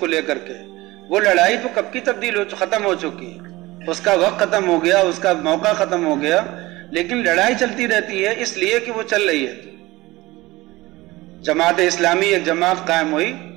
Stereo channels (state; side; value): quieter; left; 19.7 dB